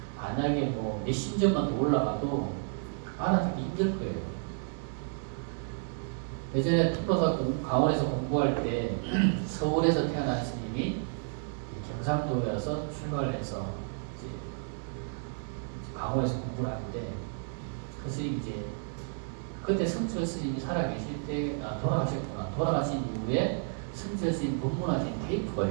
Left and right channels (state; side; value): silent; left; 57 dB below the other